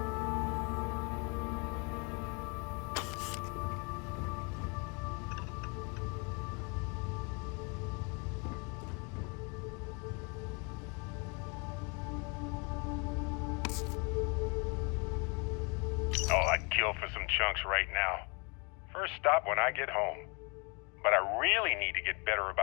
Oh, I'd kill for some chunks right now. First stop when I get home. But I really need to get better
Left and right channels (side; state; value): right; quieter; 32.3 dB